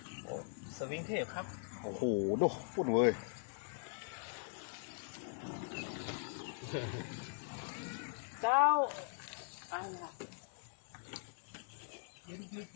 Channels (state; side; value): silent; right; 51 dB below the other